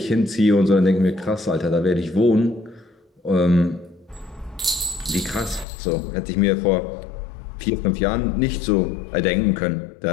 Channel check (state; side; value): drops out; right; at 5.7 s